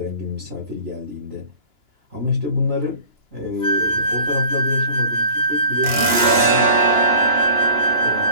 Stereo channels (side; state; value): left; late; 2.9 ms